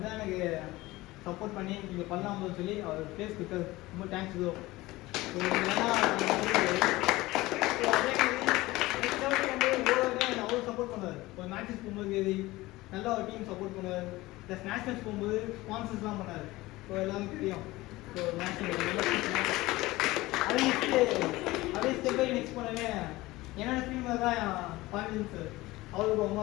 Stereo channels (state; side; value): quieter; right; 19.3 dB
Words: எனக்கு சப்போர்ட் பண்ணி நீங்கள் பண்ணலாம்னு சொல்லி அவர் ப்ளேஸ் கொடுத்தாரு. ரொம்ப தேங்க்ஸ் ப்ரோ. அவ்வளோ சப்போர்ட் பண்ணுவார். ஒரு மேட்சஸ் போகும்போது நல்லா ஒரு டீம் சப்போர்ட் பண்ணுவார். ப்ளஸ் நேஷனல்ஸ் போகும்போது ஸ்பான்சர்ஸ்லாம் பண்ணார். ஸோ எல்லாருக்கும் தெரியும். ஸோ நேஷனல் அதே ஸ்டெப் பை நெக்ஸ்ட் பண்ணவே என்னோட டீம் தான் பாண்டியன் சார். அவருக்கு அம்மா